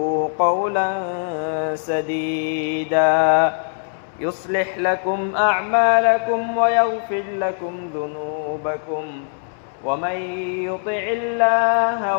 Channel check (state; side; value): silent; right; 65 dB below the other